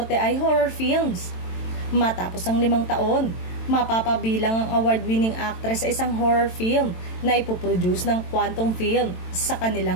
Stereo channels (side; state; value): right; late; 22 ms